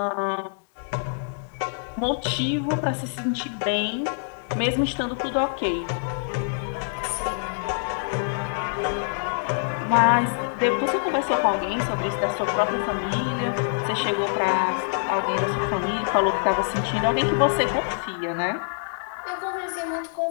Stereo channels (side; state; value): right; silent; digital silence